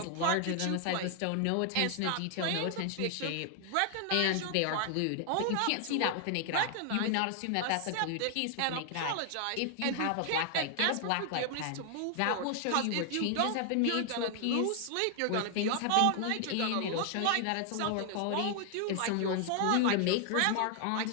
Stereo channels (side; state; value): both; different; correlation 0.00